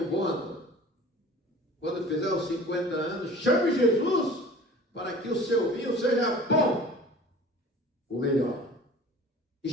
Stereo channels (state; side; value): normal; both; correlation 0.44